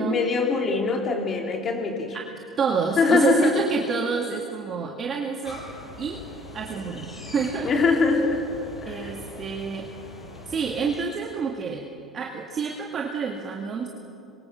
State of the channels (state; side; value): normal; both; correlation 0.59